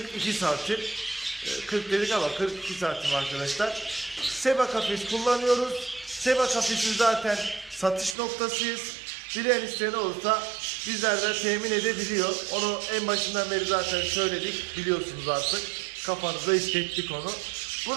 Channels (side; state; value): left; drops out; at 8.2 s